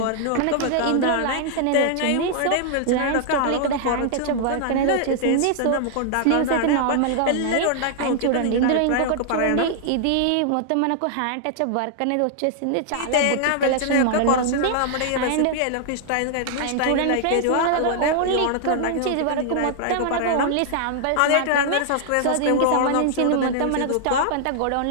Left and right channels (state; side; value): different; both; correlation -0.01